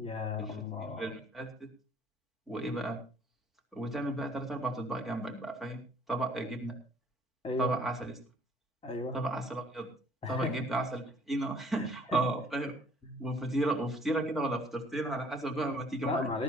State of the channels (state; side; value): normal; both; correlation 0.58